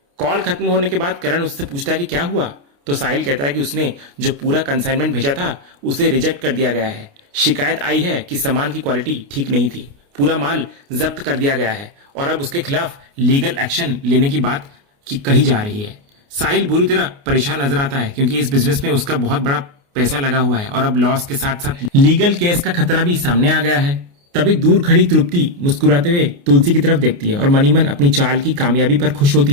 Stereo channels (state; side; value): late; left; 29 ms